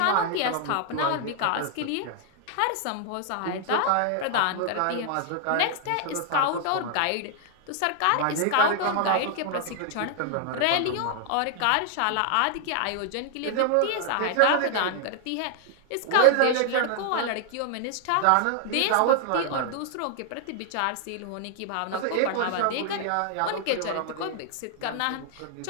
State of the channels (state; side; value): different; both; correlation 0.00